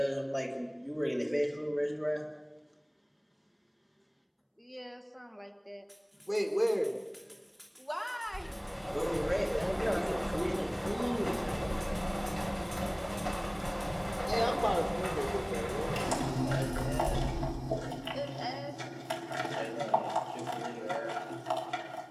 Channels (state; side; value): identical; both; correlation 1.00